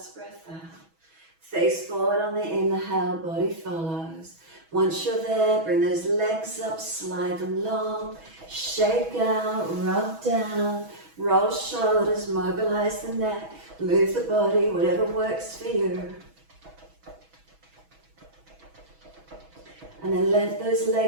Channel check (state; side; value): late; left; 6.1 ms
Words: breath out. Face forward on the inhale, body follows. Once you're there, bring those legs up, slide them long, shake out, rub down, roll shoulders, mobilise the neck, move the body, whatever works for you. And then let those